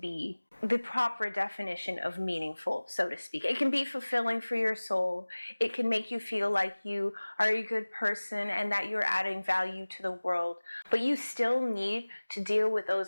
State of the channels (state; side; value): inverted; both; correlation -1.00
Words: be the proper definition of meaningful, so to speak. It can be fulfilling for your soul. It can make you feel like you are a good person and that you're adding value to the world. But you still need to deal with